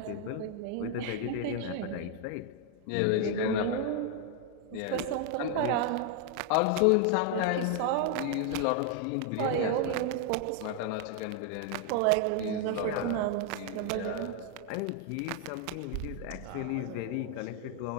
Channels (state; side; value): different; both; correlation 0.00